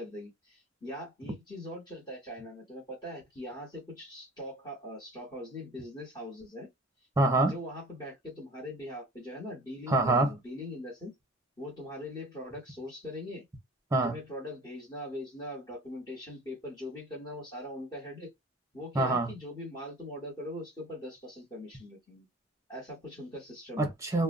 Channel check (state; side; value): normal; both; correlation 0.44